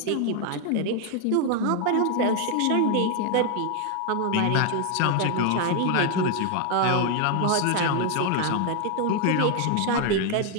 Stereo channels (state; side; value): different; both; correlation 0.01